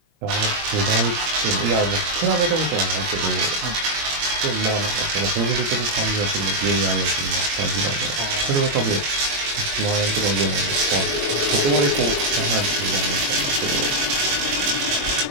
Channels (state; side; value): late; left; 22 ms